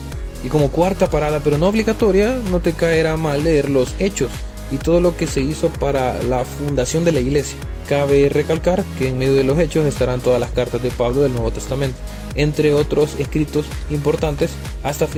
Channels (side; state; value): both; identical; correlation 1.00